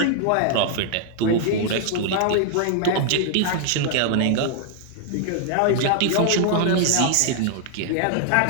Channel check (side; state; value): both; different; correlation 0.00